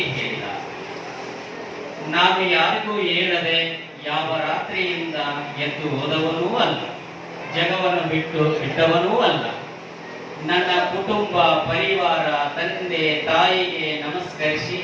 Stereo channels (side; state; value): both; identical; correlation 1.00